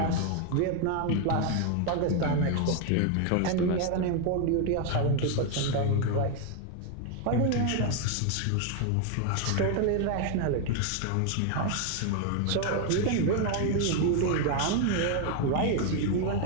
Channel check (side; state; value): both; different; correlation 0.01